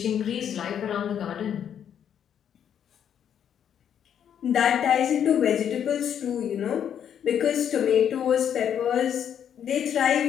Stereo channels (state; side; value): quieter; right; 9.0 dB